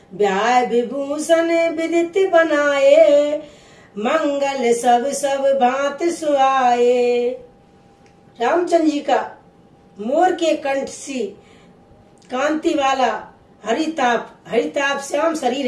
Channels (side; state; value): both; identical; correlation 1.00